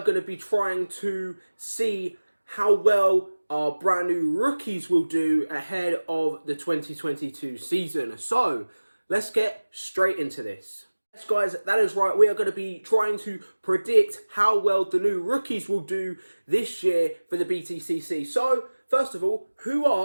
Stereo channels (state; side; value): inverted; both; correlation -1.00